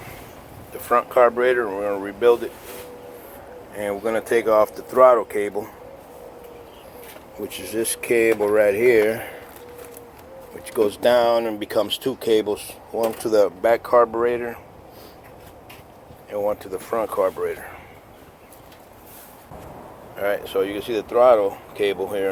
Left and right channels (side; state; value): both; identical; correlation 1.00